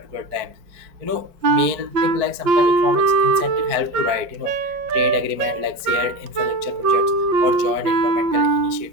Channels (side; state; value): left; late; 4.6 ms